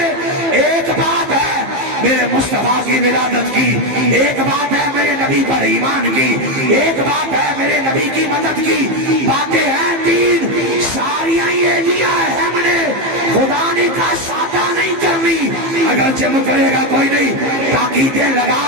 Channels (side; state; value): left; late; 15 ms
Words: ایک بات ہے میرے مصطفیٰ کی ولادت کی، ایک بات ہے میرے نبی پر ایمان کی، ایک بات ہے میرے نبی کی مدد کی، باتیں ہیں تین، ساریاں یہ دیا ہے ہم نے، خدا نے کہا سادہ نہیں کرنی، اگر جم کرے گا کوئی نہیں، تاکیدیں لگا